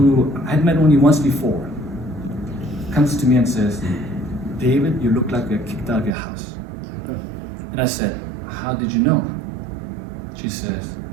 I'd met only once before, comes to me and says, "David, you look like you're kicked out of your house." And I said, "How did you know?" She says,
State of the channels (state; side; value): drops out; left; at 6.1 s